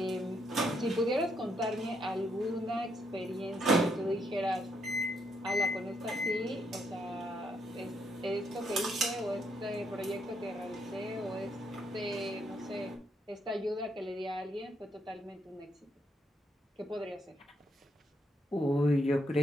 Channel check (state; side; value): normal; both; correlation 0.75